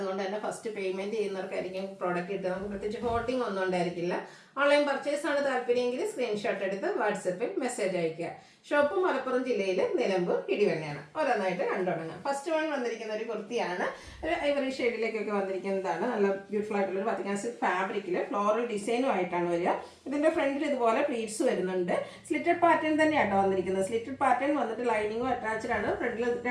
തന്നെ ഫസ്റ്റ് പേയ്മെൻറ്റ് ചെയ്യുന്നവർക്കായിരിക്കും പ്രോഡക്റ്റ് കിട്ടുക. നമുക്ക് പ്രത്യേകിച്ച് ഹോൾഡിംഗ് ഒന്നും ഉണ്ടായിരിക്കില്ല. ഓൺലൈൻ പർച്ചേസ് ആണ് താല്പര്യമെങ്കിൽ സ്ക്രീൻഷോട്ട് എടുത്ത് വാട്സപ്പിൽ മെസ്സേജ് അയയ്ക്കുക. ഷോപ്പ് മലപ്പുറം ജില്ലയിൽ നിലമ്പൂർ ഇടിവണ്ണയാണ്. ഓരോന്നായിട്ട് കണ്ടുടങ്ങാം. ഫസ്റ്റ് വൺ വന്നിരിക്കുന്ന ഒരു കുർത്തിയാണ്. ഒരു ഐവറി ഷെയ്ഡിലേക്കൊക്കെ വന്നിരിക്കുന്നതാണ്. നല്ല ബ്യൂട്ടിഫുൾ ആയിട്ടുള്ള ഒരു വത്തിക്കാൻ സിൽക്ക് ഫാബ്രിക്കിൽ ഫ്ലോറൽ ഡിസൈനും ആയിട്ടാണ് വരിക. ഇതിൻ്റെ ഫ്രണ്ടിൽ ഇതുപോലെ പ്ലീറ്റ്സ് വരുന്നുണ്ട്. സ്ലിറ്റഡ് പാറ്റേൺ തന്നെയാണ് വന്നിരിക്കുന്നത്. സ്ലിറ്റഡ് പാറ്റേൺ വന്നിട്ട് ലൈനിങ്ങും അറ്റാച്ച്ഡ് ആണ്. ഫ്രണ്ടിൽ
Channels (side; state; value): both; identical; correlation 1.00